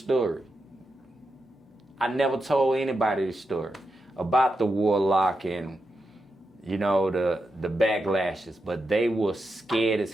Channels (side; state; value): both; normal; correlation 0.87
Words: I never told anybody this story about the warlock and, you know, the backlashes, but they were scared as